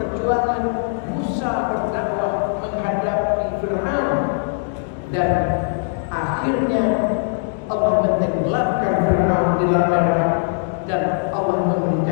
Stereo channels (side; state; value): right; silent; digital silence